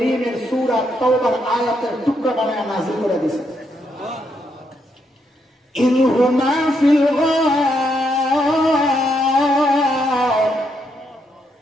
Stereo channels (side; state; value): both; normal; correlation 0.78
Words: সূরা তাওবার আয়াতের টুকরা বানায় নাযিল করে দিয়েছে। ইনহুমা ফিল গার